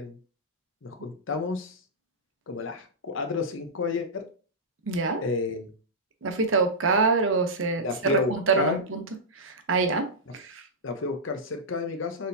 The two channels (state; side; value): normal; both; correlation -0.12